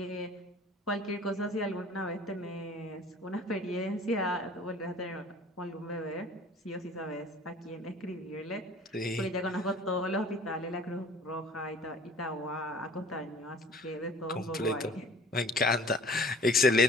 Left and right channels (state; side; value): normal; both; correlation 0.49